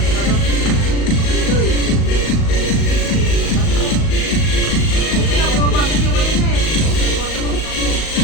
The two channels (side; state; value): right; late; 38 ms